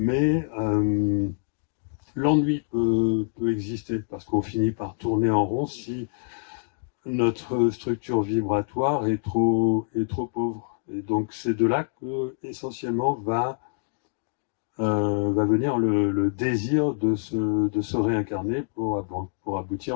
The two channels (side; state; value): right; silent; digital silence